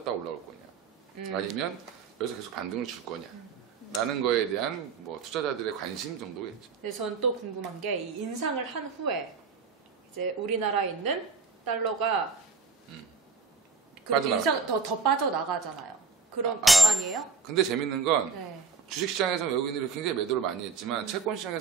올라올 거냐, 아니면 여기서 계속 반등을 줄 거냐. 라는 거에 대한 뭐 투자자들의 관심 정도겠죠. 근데 전 또 궁금한 게 이 인상을 한 후에 이제 우리나라에 있는 달러가 그 빠져나가죠. 인상 더 빠져나가잖아요. 그런 아니에요? 근데 재밌는 건 네. 주식시장에서 외국인들이 굉장히 매도를 많이 했지만 채권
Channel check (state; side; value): quieter; left; 4.7 dB